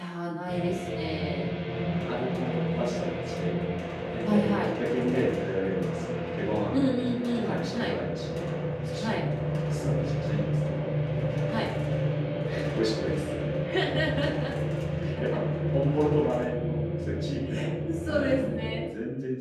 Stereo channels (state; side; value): identical; both; correlation 1.00